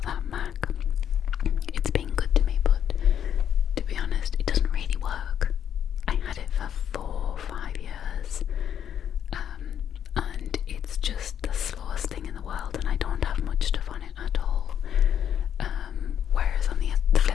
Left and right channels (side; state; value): right; quieter; 9.2 dB